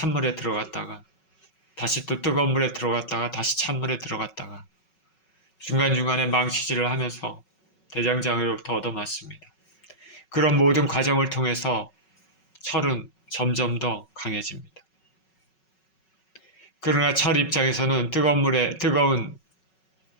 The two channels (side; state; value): right; late; 5.4 ms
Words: 들어갔다가 다시 또 뜨거운 물에 들어갔다가 다시 찬물에 들어갔다가 중간중간에 망치질을 하면서 대장장으로부터 얻어맞습니다. 그런 모든 과정을 통해서 철은 점점 더 강해집니다. 그러나 철 입장에서는 뜨거운